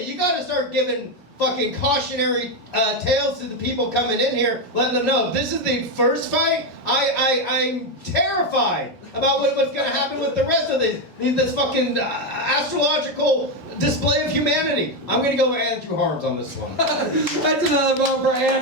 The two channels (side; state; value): both; normal; correlation 0.08